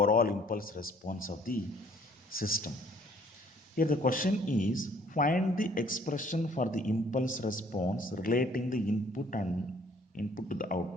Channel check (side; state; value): both; normal; correlation 0.59